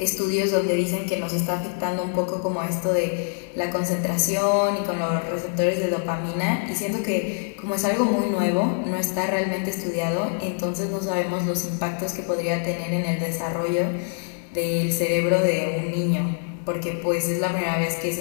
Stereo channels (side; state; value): right; silent; 62 dB below the other